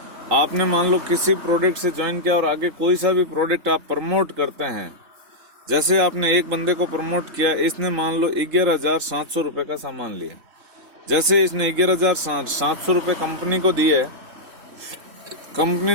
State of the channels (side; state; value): left; late; 3.8 ms